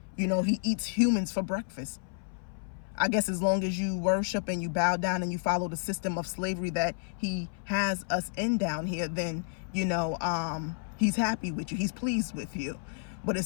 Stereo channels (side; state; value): right; silent; 57 dB below the other